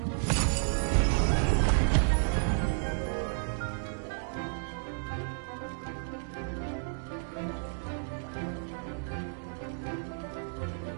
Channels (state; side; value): silent; left; digital silence